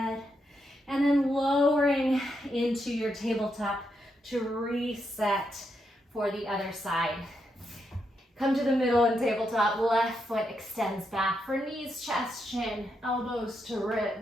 and then lowering into your tabletop to reset for the other side. Come to the middle and tabletop, left foot extends back for knees, chest, chin, elbows to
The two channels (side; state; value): both; normal; correlation 0.82